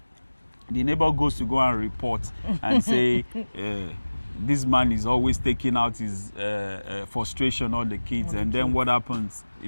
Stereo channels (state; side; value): inverted; both; correlation -1.00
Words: the neighbor goes to go and report and say, this man is always taking out his frustration on the kids, and then what happens?